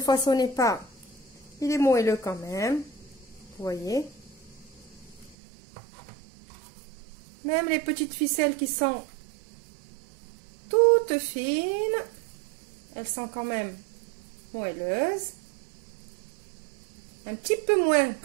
façonnez pas, il est moelleux quand même. Vous voyez. Même les petites ficelles qui sont toutes fines, elles sont quand même moelleuses. Un petit peu moins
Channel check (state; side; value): drops out; left; at 5.4 s